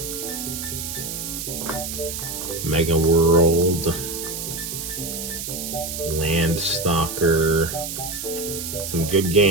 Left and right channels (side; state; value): right; noise; hiss, 6 dB below the sound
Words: Mega World. Landstalker. Some good